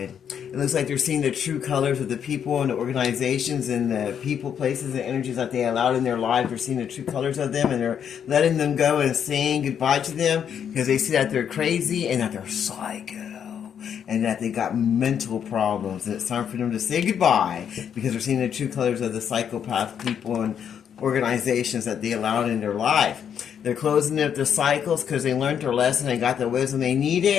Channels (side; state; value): right; quieter; 8.3 dB